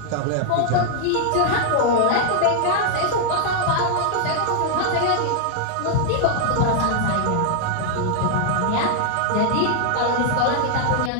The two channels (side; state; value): both; different; correlation -0.01